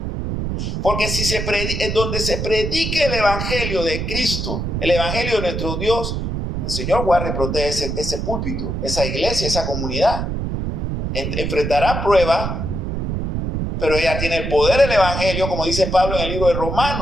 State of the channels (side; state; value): right; noise; rumble, 3 dB below the sound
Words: Porque si donde se predique el evangelio de Cristo, el evangelio de nuestro Dios, el Señor guarda y protege ese púlpito, esa iglesia, esa comunidad. Enfrentará pruebas, pero ella tiene el poder del evangelio, como dice Pablo en el libro de